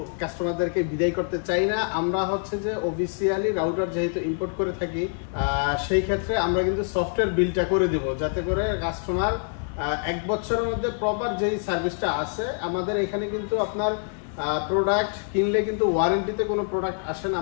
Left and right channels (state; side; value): silent; right; 56 dB below the other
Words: কাস্টমারদেরকে বিদায় করতে চাই না। আমরা হচ্ছে যে অফিসিয়ালি রাউটার যেহেতু ইম্পোর্ট করে থাকি, সেই ক্ষেত্রে আমরা কিন্তু সফটওয়্যার বিলটা করে দিব, যাতে করে কাস্টমার 1 বছরের মধ্যে প্রপার যেই সার্ভিসটা আছে আমাদের এখানে কিন্তু আপনার প্রোডাক্ট কিনলে কিন্তু ওয়ারেন্টিতে কোনো প্রোডাক্ট আসে না।